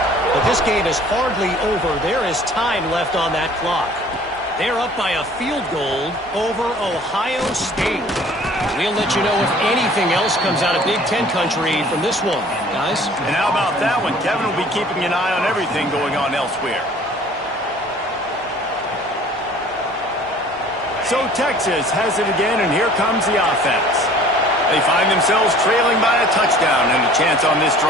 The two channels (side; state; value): both; normal; correlation 0.50